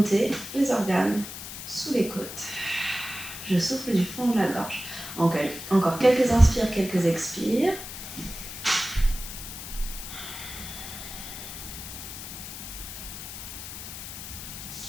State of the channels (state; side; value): noise; left; hiss, 10 dB below the sound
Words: les organes sous les côtes. Je souffle du fond de la gorge. Encore quelques inspires, quelques expires.